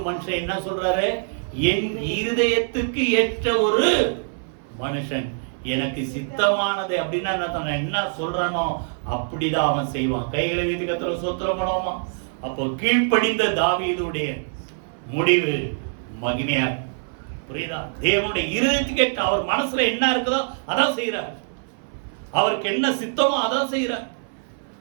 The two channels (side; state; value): left; silent; 60 dB below the other